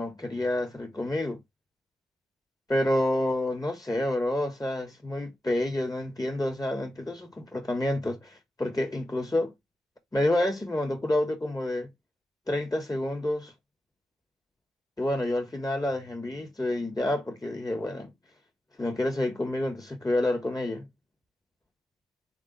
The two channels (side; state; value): both; normal; correlation 0.91